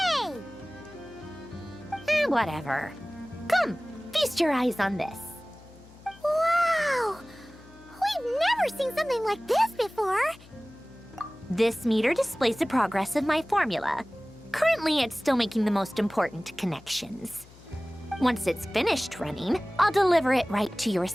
Whatever. Come, feast your eyes on this. Wow! We've never seen something like this before! This meter displays the progress of my formula. Currently, it's still making the most important connections. Once it's finished running, I'll deliver it right to your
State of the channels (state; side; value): noise; left; hum, 23 dB below the sound